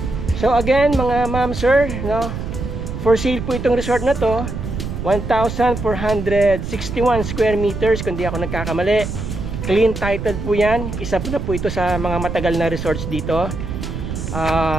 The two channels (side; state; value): right; noise; rumble, 6 dB below the sound